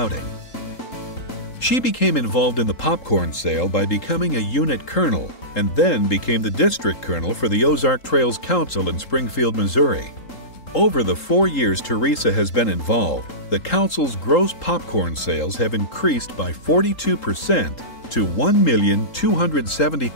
She became involved in the popcorn sale by becoming a unit colonel and then became the district colonel for the Ozark Trails Council in Springfield, Missouri. Over the 4 years Teresa has been involved, the council's gross popcorn sales have increased by 42% to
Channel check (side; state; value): right; late; 3.8 ms